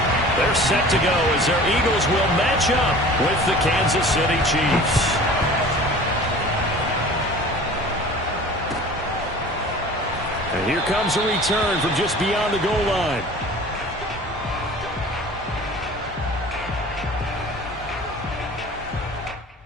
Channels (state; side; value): normal; both; correlation 0.43